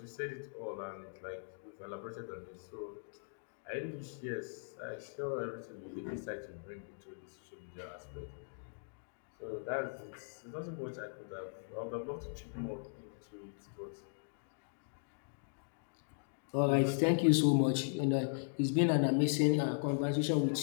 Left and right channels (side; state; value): right; silent; digital silence